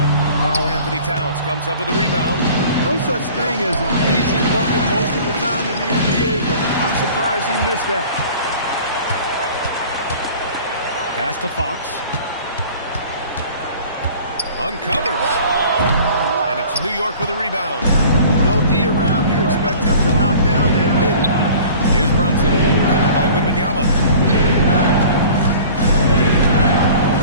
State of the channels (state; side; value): inverted; both; correlation -0.46